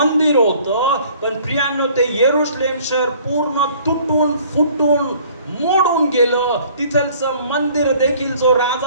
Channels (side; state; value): both; inverted; correlation -0.55